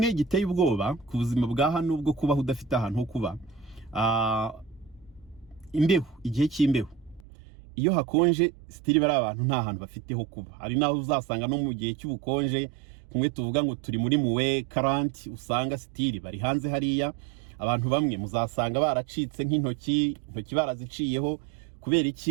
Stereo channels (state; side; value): drops out; left; at 7.2 s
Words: giteye ubwoba ku buzima bwa hano bwo kubaho udafite ahantu ho kuba, imbeho, igihe cy'imbeho. Iyo hakonje stili bari abantu nta hantu bafite ho kuba. Hari naho uzasanga no mu gihe cy'ubukonje, kumwe tuvuga ngo turi muri muwe 40, usanga stili bari hanze hariya. Abantu bamwe muzasanga baracitse nk'intoki baraziciyeho. Kubera